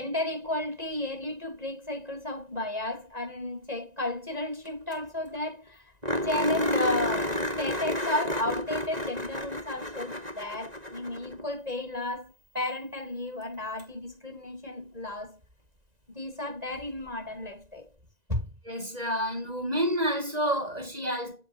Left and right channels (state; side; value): late; left; 1.9 ms